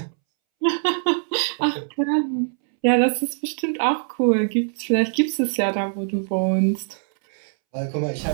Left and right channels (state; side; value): silent; left; 64 dB below the other